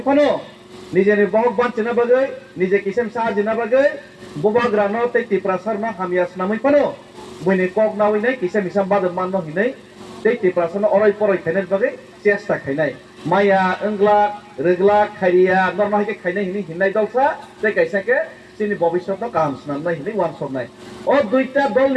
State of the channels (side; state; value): both; identical; correlation 1.00